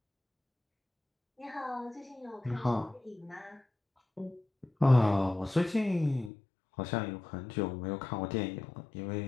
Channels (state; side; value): drops out; right; at 6.3 s